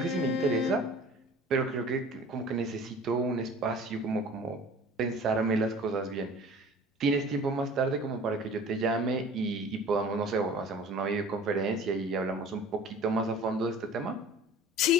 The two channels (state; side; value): normal; both; correlation 0.44